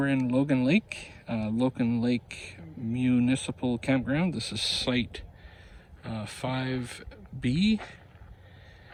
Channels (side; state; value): both; identical; correlation 1.00